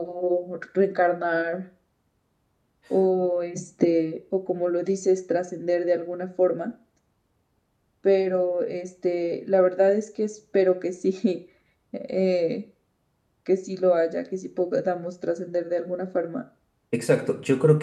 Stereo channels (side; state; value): both; identical; correlation 1.00